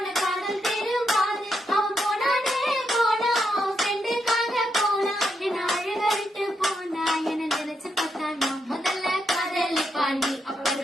காதல் திரும்பாது. அவன் போனானே போனா, அவன் ஃப்ரெண்டுக்காக போனா, என்ன அழுகழிட்டு போனா. என்ன நினைச்சு பார்த்தா நான் முதல்ல காதலி பாண்டி,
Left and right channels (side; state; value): both; normal; correlation 0.81